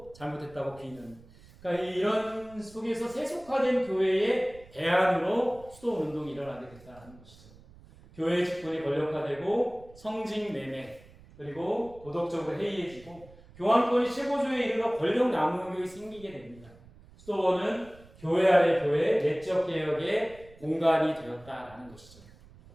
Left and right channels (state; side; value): noise; right; rumble, 23 dB below the sound